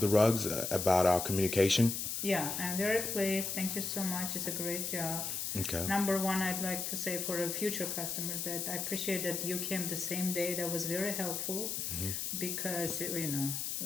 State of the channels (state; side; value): noise; left; hiss, 2 dB below the sound